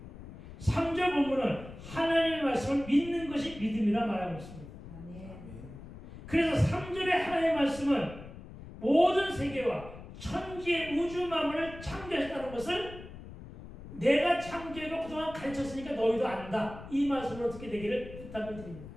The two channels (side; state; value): left; noise; rumble, 14 dB below the sound